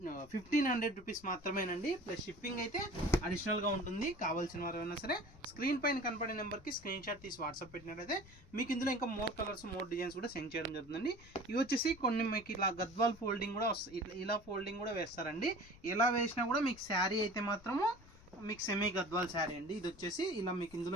రూపీస్ మాత్రమేనండి. ప్లస్ షిప్పింగ్ అయితే అడిషనల్గా ఉంటుంది. కావాల్సిన వారు అయినా సరే స్క్రీన్ పైన కనపడే నెంబర్కి స్క్రీన్ షాట్ తీసి వాట్సాప్ పెట్టినట్లయితే మీకు ఇందులో ఇంకా మోర్ కలర్స్ మోర్ డిజైన్స్ కూడా సెండ్ చేయడం జరుగుతుందండి. ఇవి వచ్చేసి కొన్ని మీకు ఇలా గద్వాల్ ఫోల్డింగ్ కూడా వస్తాయి, ఇలా ఫోల్డింగ్ కూడా వేస్తారండి. ఎలా వేసినా కూడా మీకు శారీ అయితే మాత్రము మీకు సెమీ గద్వాల్ శారీ అండి. ఇది వచ్చేసి ఇలా మీకు ఇందులో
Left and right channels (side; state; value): left; noise; rumble, 21 dB below the sound